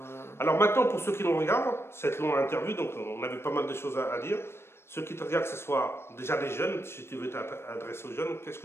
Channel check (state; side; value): late; right; 0.12 ms